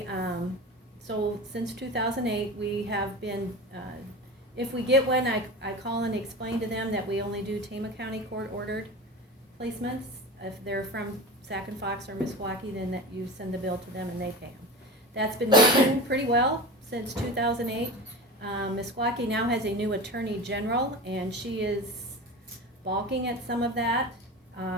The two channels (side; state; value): both; normal; correlation 0.29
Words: So since 2008, we have been, if we get one, I call and explain to them that we only do Tama County court-ordered placements. If they're from Sac and Fox or Meskwaki, then that you send the bill to them and they pay them. That's been working pretty well since 2008. Meskwaki now has a new attorney general, and she is balking at some of that